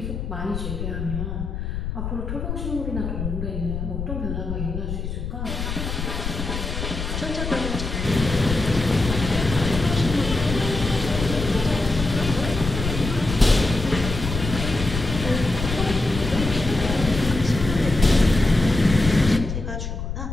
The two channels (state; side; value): noise; left; rumble, 5 dB below the sound